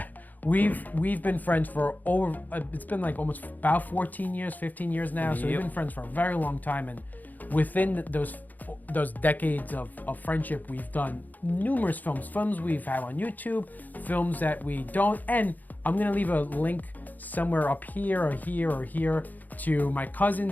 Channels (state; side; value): late; right; 0.083 ms